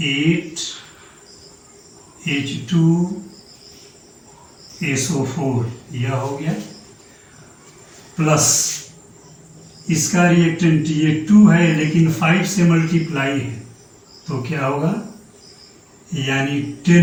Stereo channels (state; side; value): identical; both; correlation 1.00